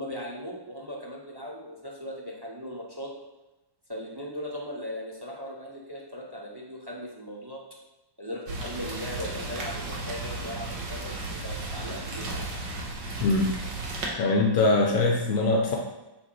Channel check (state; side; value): late; left; 1.1 ms